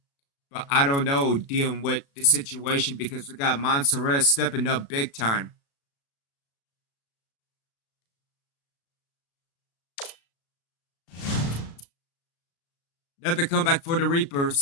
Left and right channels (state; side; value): late; right; 36 ms